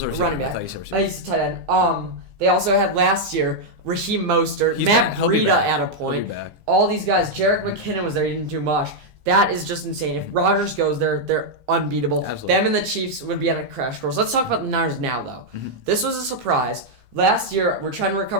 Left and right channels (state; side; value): late; left; 15 ms